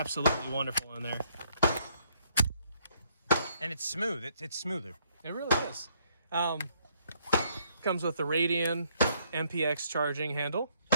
wonderful in there. And it's smooth. It's smoother. It really is. Comes with the Radian MPX charging handle.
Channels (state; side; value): inverted; both; correlation -0.69